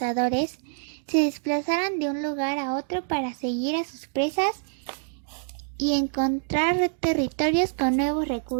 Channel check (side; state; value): left; silent; digital silence